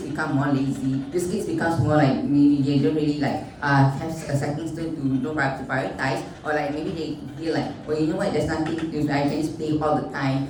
become more lazy. These kids becomes more maybe they don't really have a second stone to prioritize, or maybe they feel well, you know what, there's nothing to do, I can just play all the time.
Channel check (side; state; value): both; identical; correlation 1.00